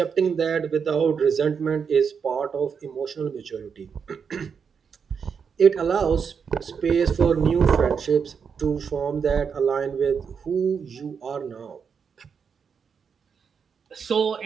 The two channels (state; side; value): quieter; left; 6.4 dB